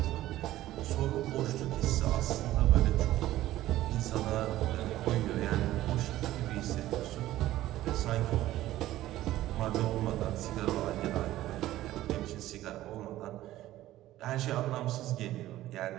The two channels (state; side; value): quieter; left; 14.9 dB